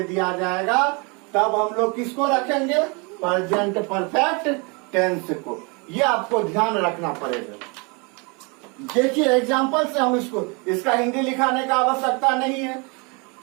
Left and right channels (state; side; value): quieter; left; 31.2 dB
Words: दिया जाएगा, तब हम लोग किसको रखेंगे? प्रेजेंट परफेक्ट टेंस को। ये आपको ध्यान रखना पड़ेगा। देखिए एग्जाम्पल से हम इसका हिंदी लिखाने का आवश्यकता नहीं है।